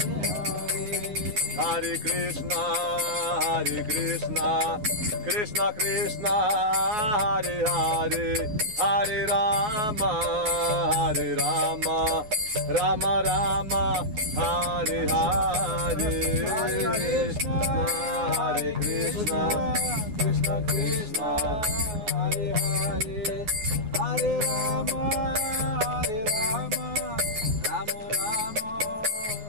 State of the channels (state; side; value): late; left; 9.5 ms